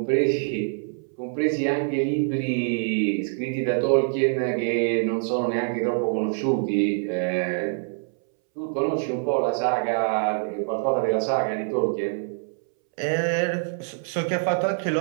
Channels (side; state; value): left; silent; 62 dB below the other